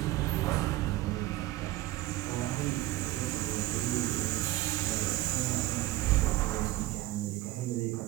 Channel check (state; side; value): quieter; left; 16.8 dB